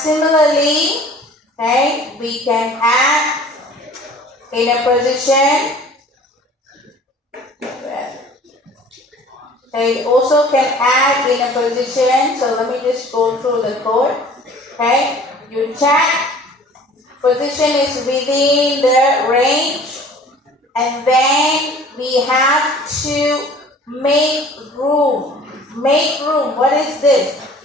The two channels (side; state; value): both; normal; correlation 0.48